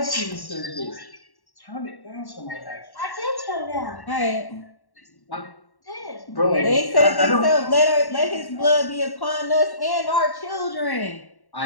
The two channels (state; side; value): late; right; 1.1 ms